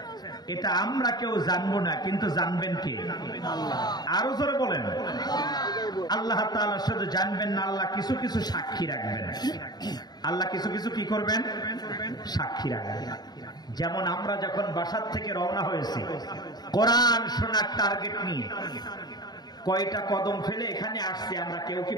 এটা আমরা কেউ জানবো না, কিন্তু জানবেন কে? আরো জোরে বলেন। আল্লাহ তাআলা শুধু জানবেন না, আল্লাহ কিছু কিছু সাক্ষী রাখবেন। আল্লাহ কিছু কিছু কি করবেন? সাক্ষী রাখবেন। যেমন আমরা যখন বাসার থেকে রওনা হয়েছি কোরআন শোনার টার্গেট নিয়ে, কয়টা কদম ফেলে এখানে আসছি আমরা কেউ কি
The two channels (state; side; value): late; right; 0.20 ms